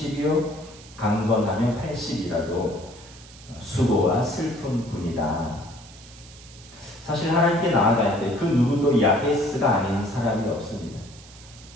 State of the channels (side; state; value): right; noise; hiss, 20 dB below the sound